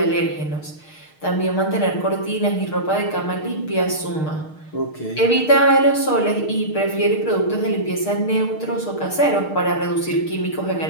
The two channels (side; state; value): right; late; 6.5 ms